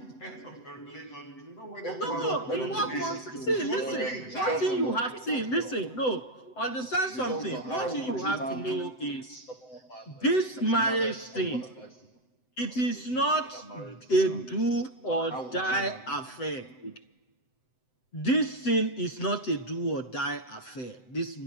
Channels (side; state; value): right; late; 7.9 ms